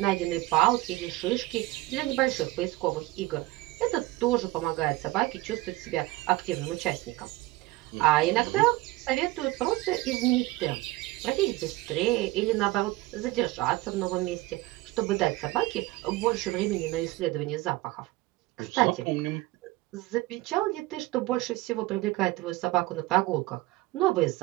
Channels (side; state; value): left; quieter; 19.5 dB